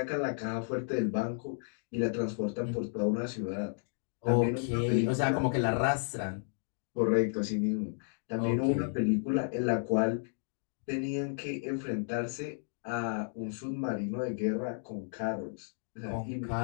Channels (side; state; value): right; silent; digital silence